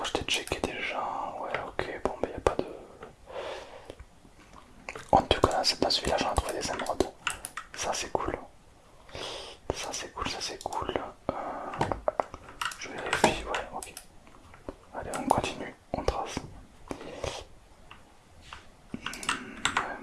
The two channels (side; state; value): both; identical; correlation 1.00